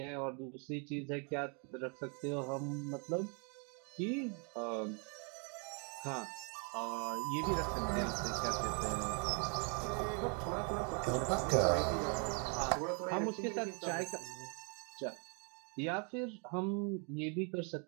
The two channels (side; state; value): left; quieter; 37.5 dB